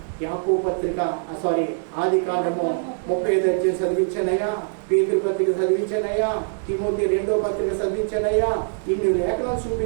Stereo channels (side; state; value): left; silent; digital silence